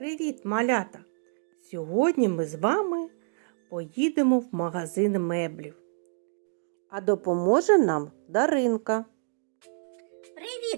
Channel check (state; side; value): silent; left; digital silence